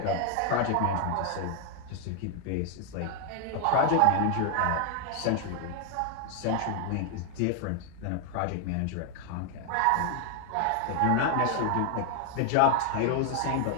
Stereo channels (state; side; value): different; both; correlation 0.00